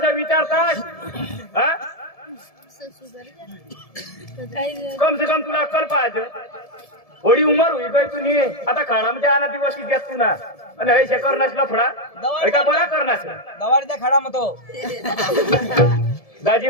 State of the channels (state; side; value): late; right; 1.7 ms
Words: विचारतास हा कम से कम तुला अक्कल पाहिजे थोडी उमर होई गई तुनी आता खाणामध्ये आणा दिवस की घेत तू ना आणि हे करणास लफडा हे का बरा करणास गवार द्या खडा मतो दाजी